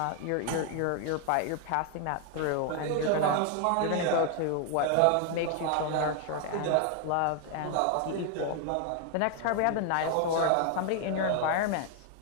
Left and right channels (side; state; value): both; different; correlation 0.01